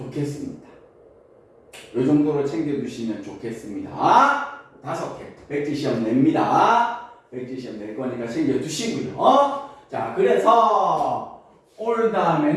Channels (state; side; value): identical; both; correlation 1.00